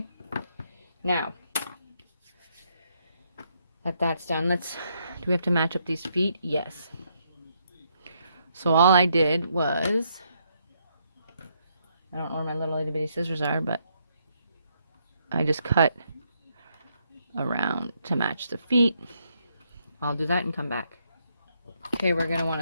now that that's done, do we have to match up these feet? Yes. So all I did was, I don't know where my little itty bitty scissors are, but I just cut around to match the feet. I'll do that and come back. Okay, we're going to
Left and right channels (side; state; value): both; inverted; correlation -0.75